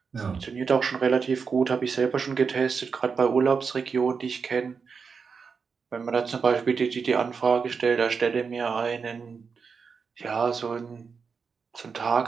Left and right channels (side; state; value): left; quieter; 5.5 dB